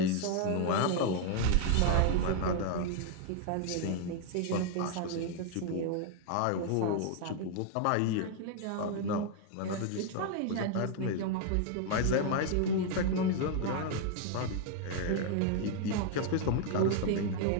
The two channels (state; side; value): different; both; correlation 0.00